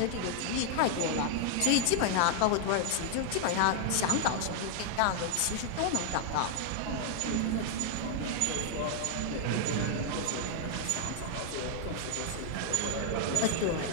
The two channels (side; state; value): both; different; correlation 0.00